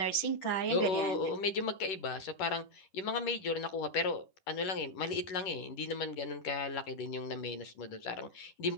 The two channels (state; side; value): late; right; 10 ms